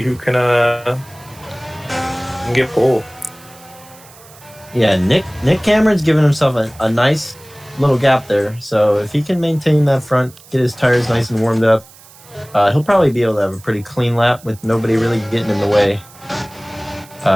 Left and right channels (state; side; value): noise; right; hiss, 23 dB below the sound